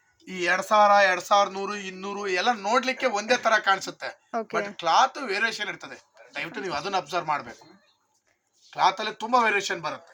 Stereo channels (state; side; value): identical; both; correlation 1.00